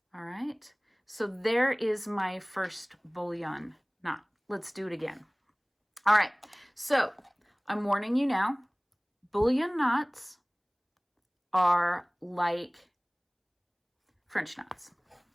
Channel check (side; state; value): both; identical; correlation 1.00